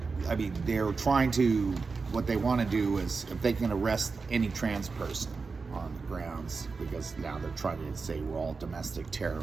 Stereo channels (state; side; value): quieter; left; 4.5 dB